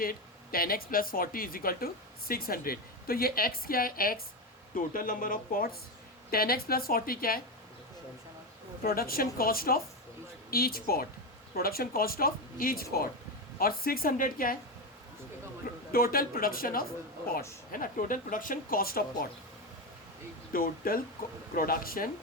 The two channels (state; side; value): normal; both; correlation 0.13